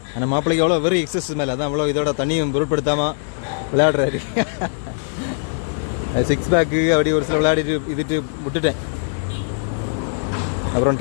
ஆனால் மாப்பிள்ளைக்கு எவ்வளோ வெறும் எக்ஸசைஸ் மேலே, அதான் அவ்வளோ இதோட தண்ணியும் பொருட்படுத்தாமல் விளையாடுறாரு. சிக்ஸ் பேக்கு அப்படி ஒரு சில விளையாடிட்டு இதுட்டு விட்டுட்டேன். அப்புறம்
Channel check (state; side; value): silent; right; digital silence